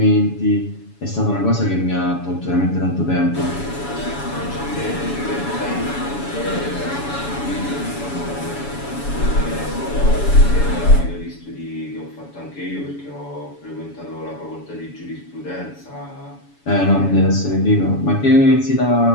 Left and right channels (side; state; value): right; late; 7.1 ms